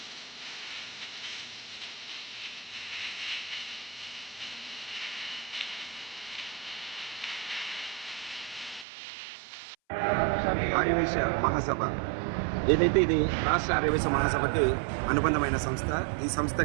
Aryavaishya Mahasabha ఏదైతే ఇది రాష్ట్ర ఆర్యవైశ్య మహాసభకి అనుబంధమైన సంస్థ. ఈ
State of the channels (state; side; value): drops out; left; at 8.8 s